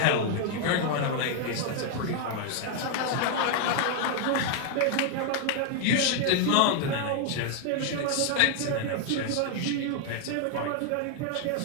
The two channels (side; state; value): both; different; correlation 0.00